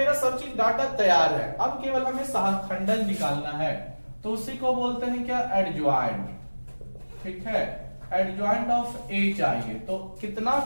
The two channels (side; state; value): both; inverted; correlation -1.00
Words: सब चीज डाटा तैयार है, अब केवल हमें सहखंडन निकालना है। तो उसी को बोलते हैं क्या, एडज्वाइंट। ठीक है, एडज्वाइंट ऑफ ए चाहिए, तो कितना